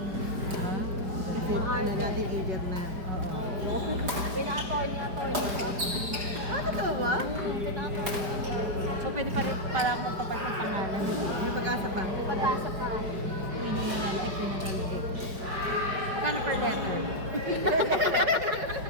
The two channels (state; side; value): late; left; 4.9 ms